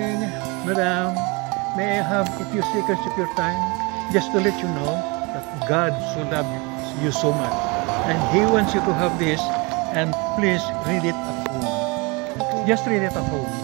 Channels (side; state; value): left; quieter; 28.2 dB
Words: madam. May I have a few seconds of your time? Just to let you know that God so loves you so much. And He wants you to have this, and please read it at home. Just read it at home.